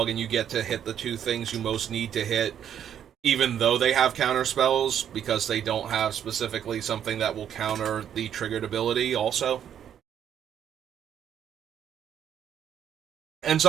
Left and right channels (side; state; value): left; quieter; 9.4 dB